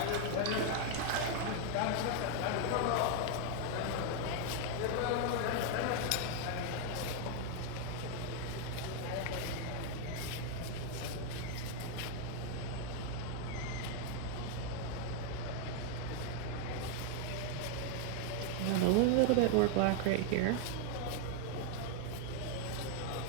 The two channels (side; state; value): both; different; correlation 0.00